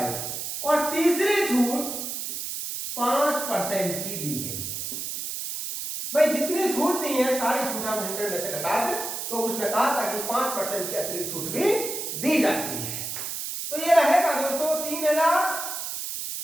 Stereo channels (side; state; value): right; noise; hiss, 5 dB below the sound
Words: और तीसरी छूट 5% की दी गई। भाई, जितनी छूट दी है सारी छूट हम 100 में से घटा दें, तो उसने कहा था कि 5% की अतिरिक्त छूट भी दी जाती है। तो ये रहेगा दोस्तों